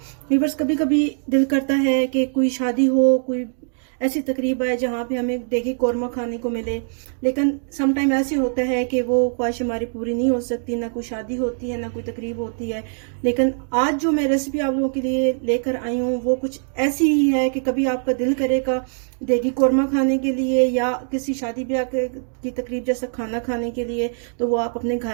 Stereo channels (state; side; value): silent; left; 64 dB below the other